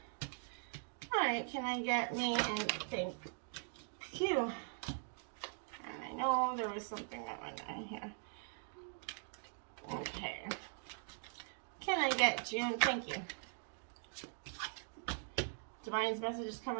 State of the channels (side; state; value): left; silent; 50 dB below the other